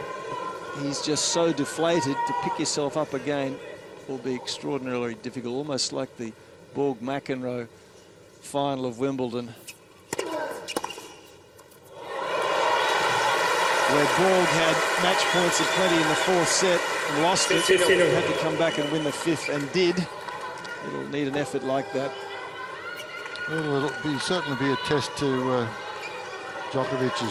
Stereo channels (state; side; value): identical; both; correlation 1.00